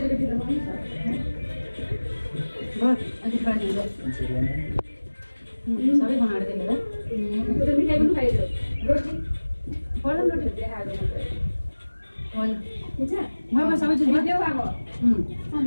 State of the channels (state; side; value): inverted; both; correlation -1.00